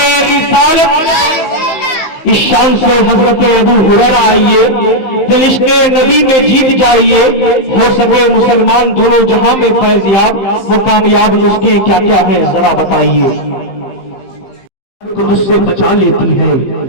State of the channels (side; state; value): right; late; 15 ms